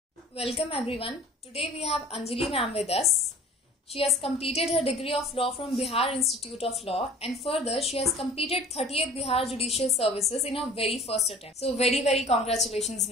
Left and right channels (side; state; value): both; normal; correlation 0.45